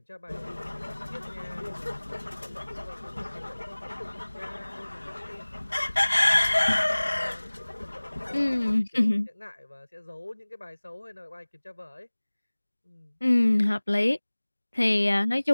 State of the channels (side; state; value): both; inverted; correlation -1.00